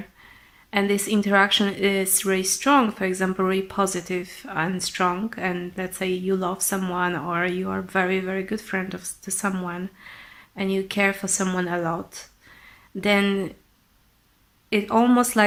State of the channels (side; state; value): both; identical; correlation 1.00